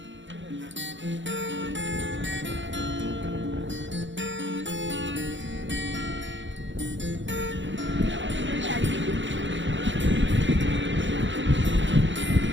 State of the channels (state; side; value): late; left; 0.54 ms